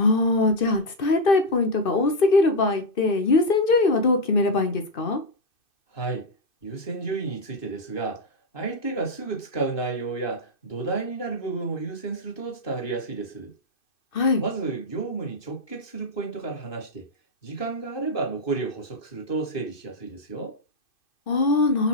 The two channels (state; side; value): late; right; 2.6 ms